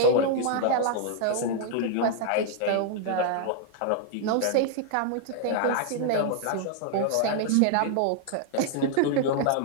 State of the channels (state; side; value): different; both; correlation -0.01